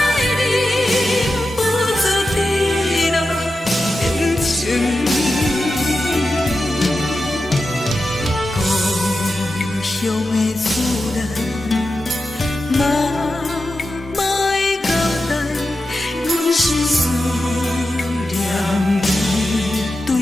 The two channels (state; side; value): normal; both; correlation 0.91